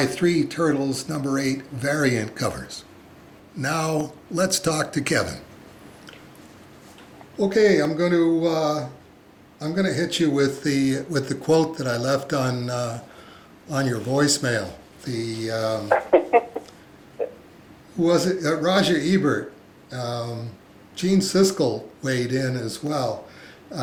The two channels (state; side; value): identical; both; correlation 1.00